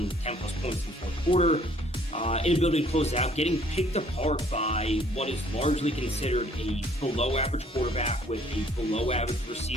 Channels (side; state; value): both; normal; correlation 0.60